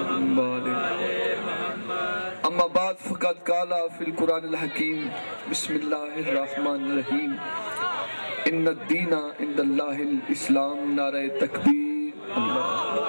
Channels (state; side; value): inverted; both; correlation -1.00